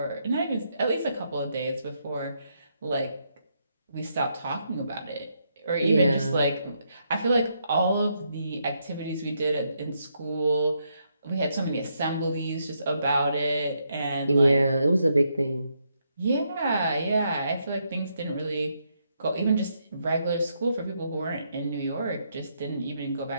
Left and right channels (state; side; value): inverted; both; correlation -0.78